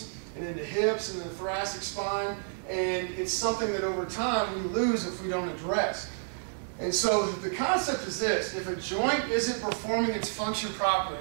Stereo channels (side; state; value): left; silent; digital silence